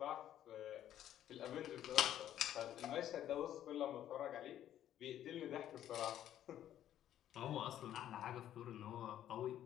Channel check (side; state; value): right; quieter; 11.5 dB